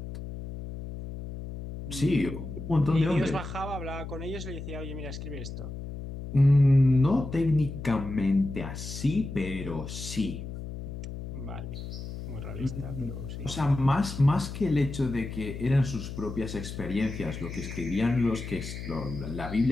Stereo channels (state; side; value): noise; left; hum, 8 dB below the sound